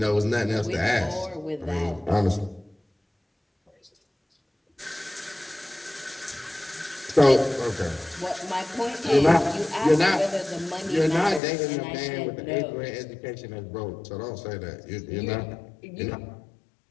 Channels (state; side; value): drops out; right; at 11.4 s